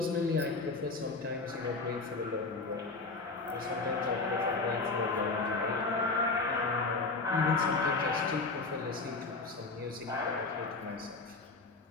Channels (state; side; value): quieter; right; 3.7 dB